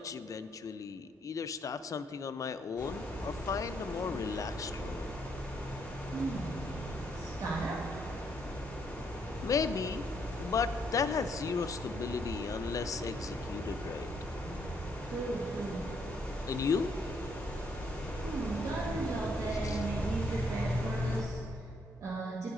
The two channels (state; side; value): normal; both; correlation 0.72